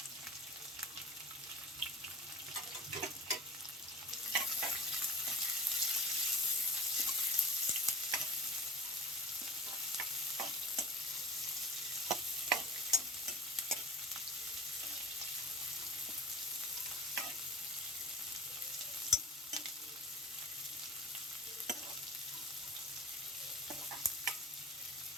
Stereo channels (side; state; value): both; normal; correlation 0.38